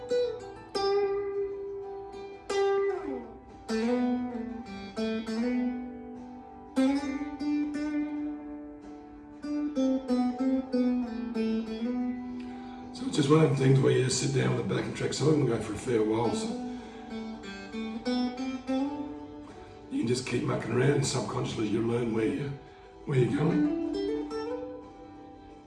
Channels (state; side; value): identical; both; correlation 1.00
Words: So it's just one of them things where you just sit down with a backing track. Some of them go for a fair while, so you can just keep mucking around and subconsciously you learn where you're going.